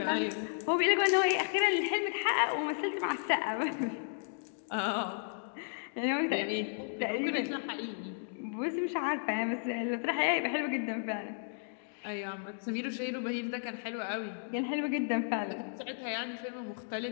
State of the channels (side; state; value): right; silent; digital silence